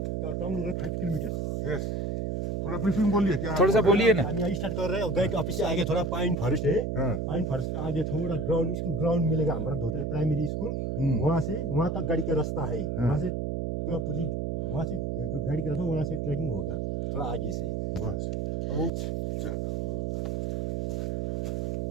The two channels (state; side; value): noise; right; hum, 2 dB below the sound